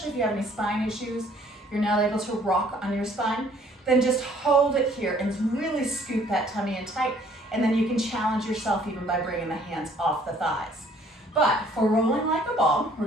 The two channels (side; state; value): both; normal; correlation 0.59